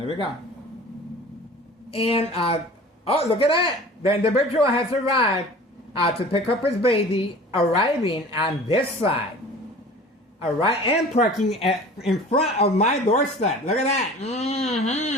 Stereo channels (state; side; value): normal; both; correlation 0.42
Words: we go. And, oh, look at that. The individual has arrived to pick up his baby, arriving on this side. And parking in front of my doorstep. Look at that.